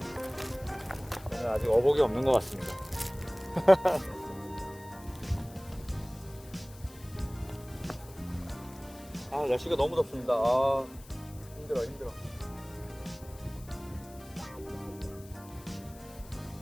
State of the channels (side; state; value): left; noise; hiss, 21 dB below the sound